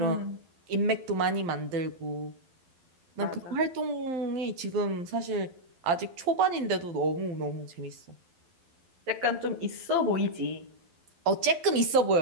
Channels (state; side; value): late; left; 12 ms